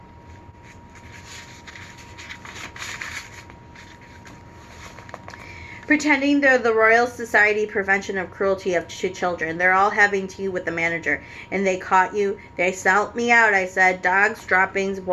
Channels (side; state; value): both; identical; correlation 1.00